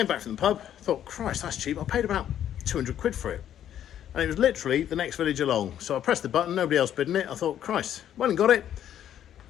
back from the pub, thought, Christ, that's cheap. I paid about 200 quid for it. And it was literally the next village along. So I pressed the button, nobody else bidding it. I thought, Christ, went and got it.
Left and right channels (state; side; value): quieter; right; 10.6 dB